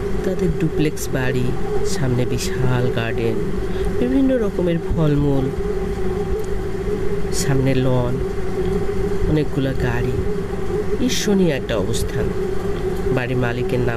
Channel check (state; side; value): identical; both; correlation 1.00